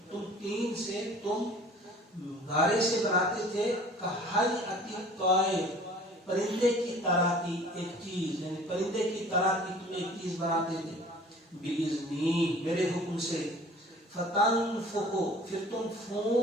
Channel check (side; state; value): both; normal; correlation 0.48